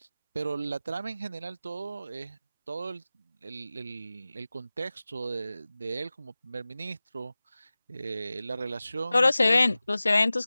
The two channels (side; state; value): both; inverted; correlation -0.96